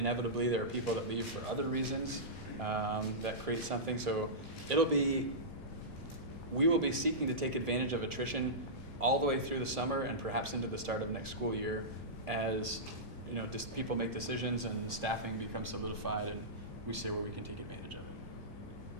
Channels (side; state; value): both; normal; correlation -0.16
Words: there are people that leave for other reasons that create something. So we will be seeking to take advantage of attrition all the way through the summer and perhaps into the start of next school year as just people make decisions and staffing becomes solidified and we see where we can take advantage of it.